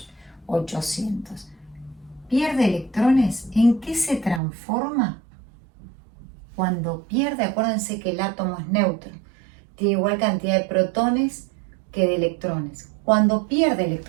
800. Pierde electrones, ¿en qué se transforma? Cuando pierde, acuérdense que el átomo es neutro, tiene igual cantidad de protones que de electrones. Cuando pierde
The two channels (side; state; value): left; drops out; at 4.4 s